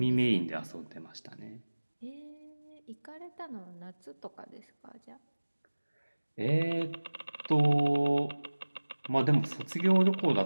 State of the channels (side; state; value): both; inverted; correlation -1.00